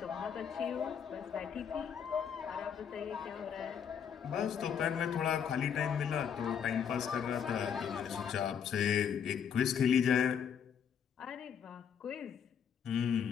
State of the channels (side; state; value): right; quieter; 7.7 dB